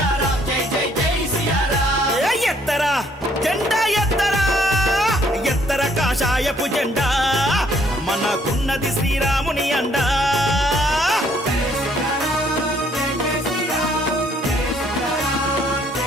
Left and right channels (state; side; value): normal; both; correlation 0.65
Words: జై జై జై సియారాం ఎత్తరా జెండా ఎత్తరా ఎత్తర కాషాయపు జెండా మనకున్నది శ్రీరాముని అండా